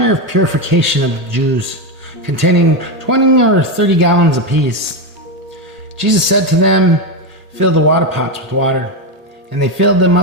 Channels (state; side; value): late; left; 1.1 ms